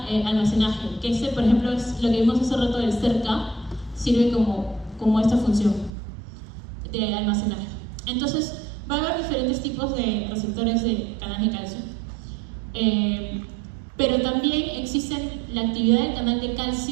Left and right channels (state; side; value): drops out; left; at 5.9 s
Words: almacenaje, que ese, por ejemplo, es lo que vimos hace rato del CERCA, sirve como esta función de almacenaje. Entonces, va a haber diferentes tipos de receptores de canales de calcio. Pero también existe la actividad del canal de